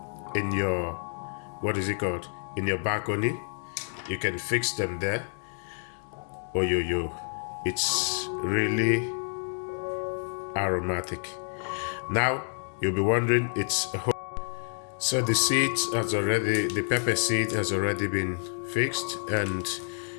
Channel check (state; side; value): silent; right; digital silence